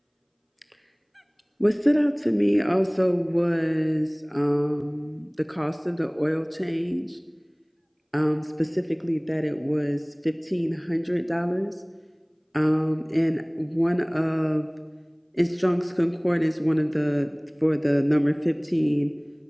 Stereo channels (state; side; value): identical; both; correlation 1.00